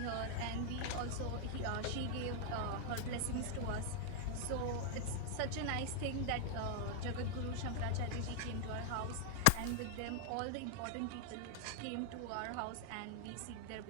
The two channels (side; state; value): both; different; correlation 0.00